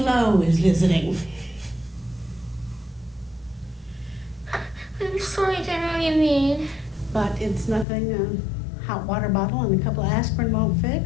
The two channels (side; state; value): right; drops out; at 7.9 s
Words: is visiting. I'm sorry, I don't know what you mean. But it's nothing a hot water bottle and a couple of aspirin won't